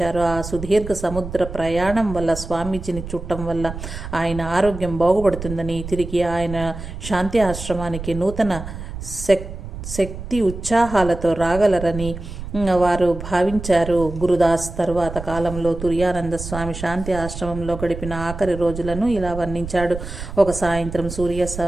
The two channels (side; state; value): right; noise; rumble, 9 dB below the sound